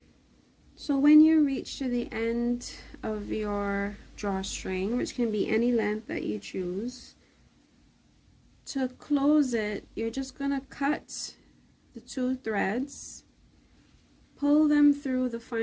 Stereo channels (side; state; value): both; identical; correlation 1.00